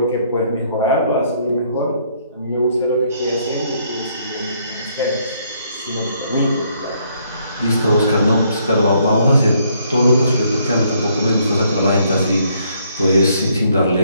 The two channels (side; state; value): both; inverted; correlation -0.69